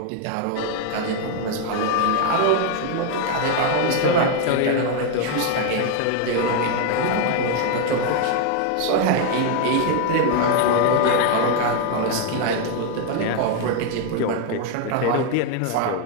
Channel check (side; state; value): both; different; correlation 0.01